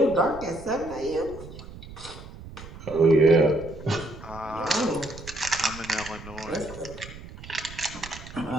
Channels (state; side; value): noise; right; rumble, 14 dB below the sound